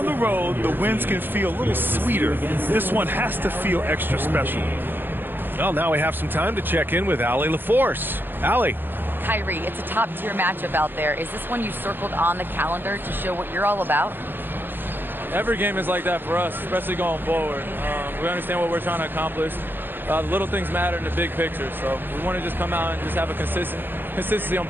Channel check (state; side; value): late; left; 0.097 ms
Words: the road, the wins can feel a little sweeter. This one has to feel extra special. Well, now we have some time to check in with Allie LaForce. Allie. Kyrie, it's a top-tier matchup out there. Is this one you circled on the calendar to show what you're all about? Every game is like that for us, especially going forward. We understand what we're trying to accomplish. little things matter in the big picture. So we want to just come out and just have a consistency on